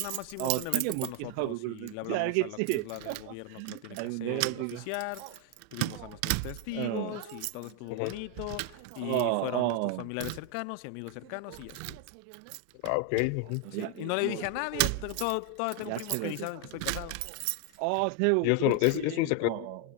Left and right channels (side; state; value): both; different; correlation 0.01